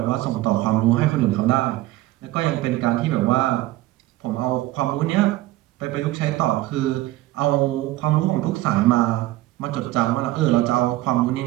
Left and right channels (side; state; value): left; quieter; 16.8 dB